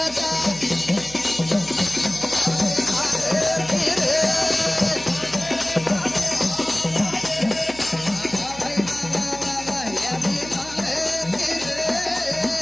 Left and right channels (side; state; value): right; noise; hum, 17 dB below the sound